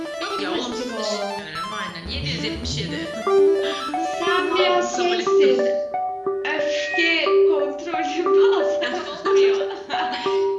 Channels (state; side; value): identical; both; correlation 1.00